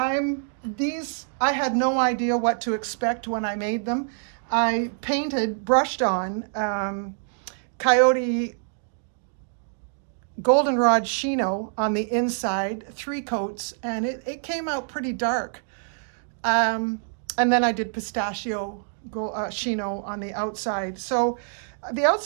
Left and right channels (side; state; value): left; silent; digital silence